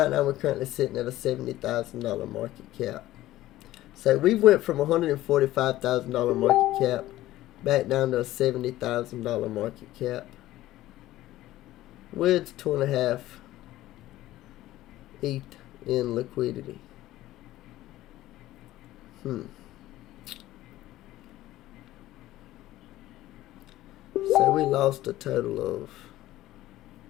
now we're currently sitting at a $70,000 market cap. So we went from $145,000 market cap back down to a $70,000 market cap with 2.5 ETH in liquidity. So we lost a total of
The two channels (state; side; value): quieter; right; 15.5 dB